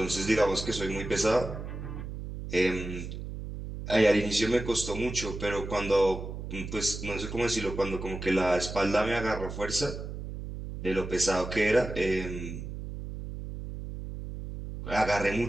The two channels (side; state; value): right; noise; hum, 8 dB below the sound